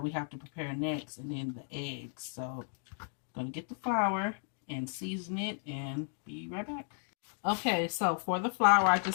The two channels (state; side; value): silent; right; 55 dB below the other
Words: we have to prepare next, and then the eggs. So I'm going to get the flour and season it and be right back. Okay, so for the flour, I